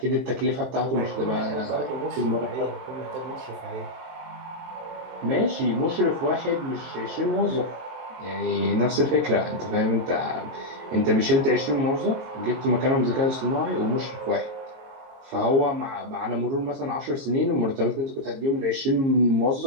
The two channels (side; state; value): left; late; 23 ms